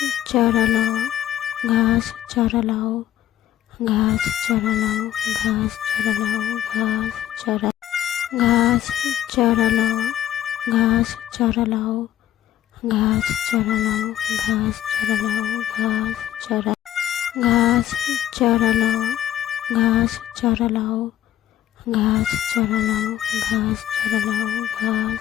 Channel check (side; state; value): right; quieter; 12.2 dB